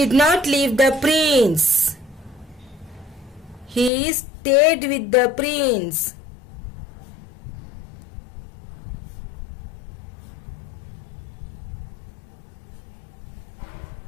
not leave the prince. He stayed with the prince.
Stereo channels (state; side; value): drops out; right; at 3.9 s